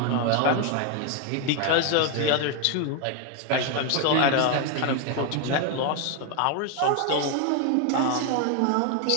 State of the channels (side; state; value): both; different; correlation 0.01